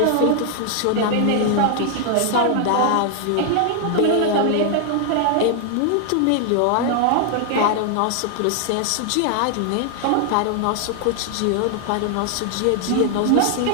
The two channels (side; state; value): both; different; correlation 0.00